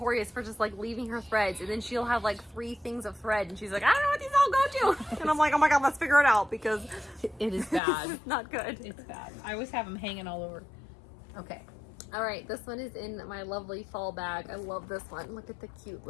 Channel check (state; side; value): drops out; right; at 7.8 s